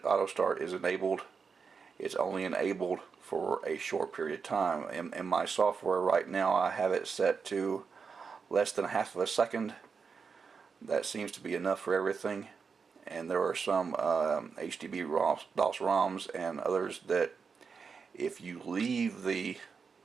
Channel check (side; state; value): left; quieter; 5.5 dB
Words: auto start is enabled, it's only enabled for a short period of time. In my software right now, I have it set to less than half of a second. That seems to be enough for everything. And there are some HDB DOS ROMs and others that if you leave the